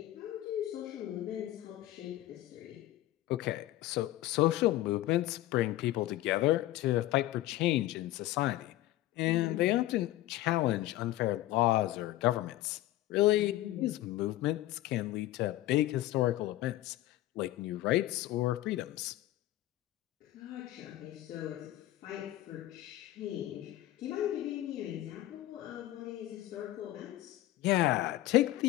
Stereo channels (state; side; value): quieter; right; 15.5 dB